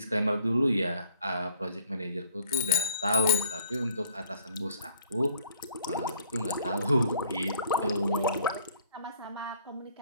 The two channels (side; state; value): both; inverted; correlation -0.57